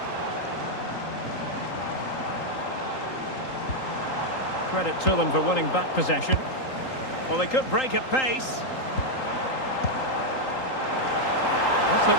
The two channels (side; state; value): right; late; 3.8 ms